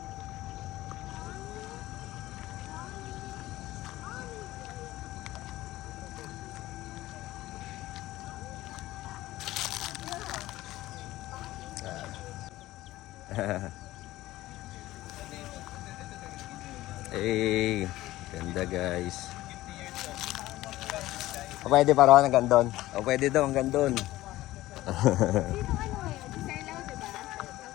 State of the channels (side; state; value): right; quieter; 16.5 dB